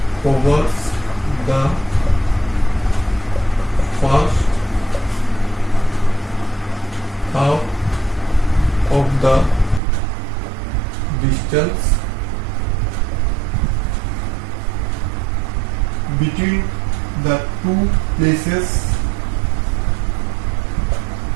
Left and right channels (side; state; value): left; drops out; at 9.8 s